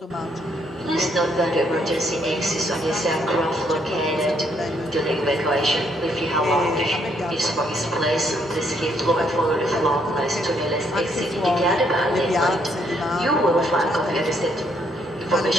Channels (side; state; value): both; normal; correlation 0.71